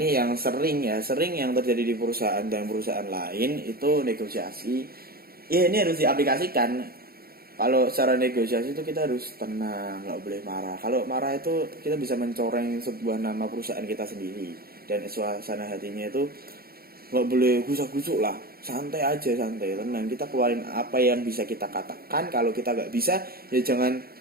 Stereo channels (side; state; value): left; late; 0.44 ms